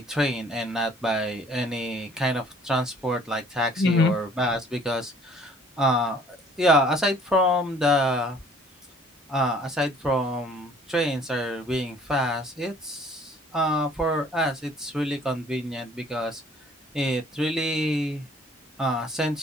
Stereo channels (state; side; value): normal; both; correlation 0.56